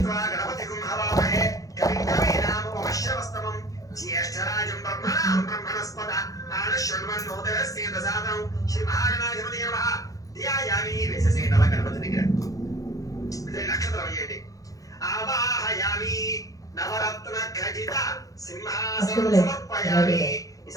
గణపతిగుం హవామహే కవిం కవీనాముపమశ్రవస్తమం జ్యేష్ఠరాజం బ్రహ్మణాం బ్రహ్మణస్పద ఆనశృణ్వన్నోదరస్య దశాదం శ్రీ మహాగణాధిపతయే నమః. ధ్యాయామి వేసేసేయండి అలా గణపతి దగ్గర. నక్షత్రం వేయండి. ఆవాహయామి నవరత్న ఖచిత సింహాసనం సమర్పయామి.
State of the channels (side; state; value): right; late; 0.17 ms